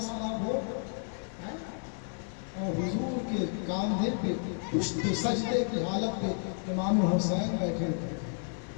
نہ ہو, اور حضور کے کاندھے پہ پشت سجدے کی حالت پہ امام حسین بیٹھے ہوئے,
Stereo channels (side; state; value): right; silent; 57 dB below the other